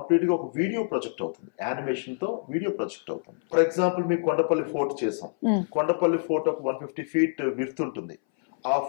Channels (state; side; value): silent; right; 60 dB below the other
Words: గా ఒక వీడియో ప్రాజెక్ట్ అవుతుంది, యానిమేషన్ తో వీడియో ప్రాజెక్ట్ అవుతుంది. ఫర్ ఎగ్జాంపుల్ మీకు కొండపల్లి ఫోర్ట్ చేసాం. కొండపల్లి ఫోర్ట్ ఒక 150 feet విడ్త్ ఉంటుంది. ఆ